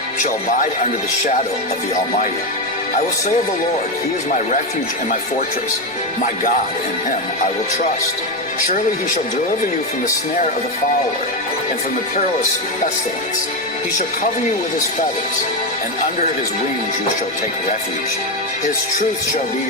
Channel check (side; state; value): both; normal; correlation 0.10